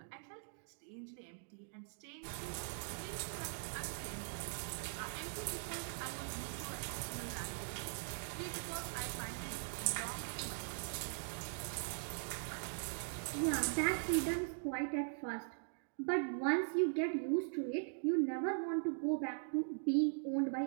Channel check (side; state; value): left; silent; digital silence